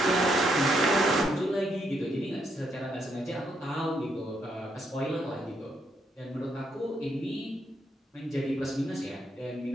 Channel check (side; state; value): both; normal; correlation 0.76